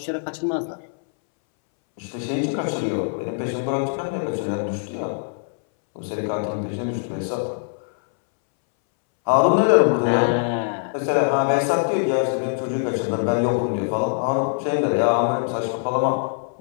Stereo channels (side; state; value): right; silent; 64 dB below the other